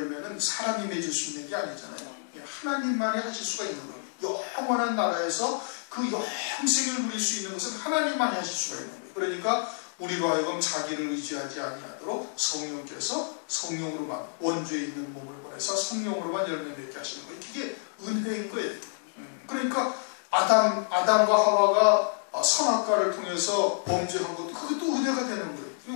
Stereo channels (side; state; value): right; silent; digital silence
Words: 사람이 맺을 수 있는 게 아니잖아요. 하나님만이 하실 수가 있는 거예요. 영원한 나라에서 그 영생을 누릴 수 있는 것은 하나님만이 하실 수가 있는 거예요. 그러니까 우리로 하여금 자기를 의지하지 아니하도록 성령께서 성령으로만, 원주에 있는 몸을 보내서 성령으로만 열매 맺게 하시는 거예요. 그게 은혜인 거예요. 그러니까 아담과 하와가 선악과를 통해서 범죄한 것도, 그것도 은혜가 되는